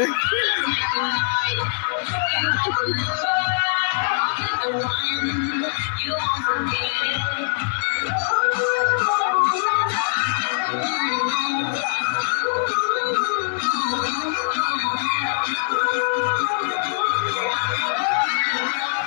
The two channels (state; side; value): silent; right; digital silence